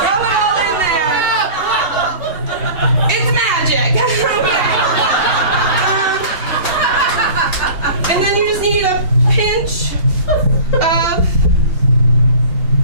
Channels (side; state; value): left; late; 2.8 ms